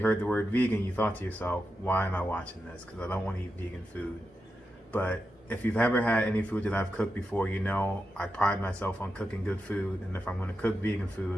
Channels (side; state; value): both; normal; correlation 0.88